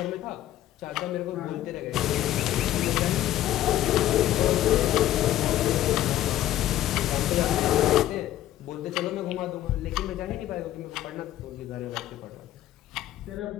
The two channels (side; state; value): right; quieter; 13.3 dB